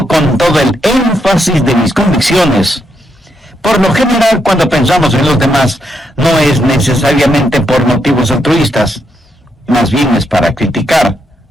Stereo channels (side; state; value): both; normal; correlation 0.79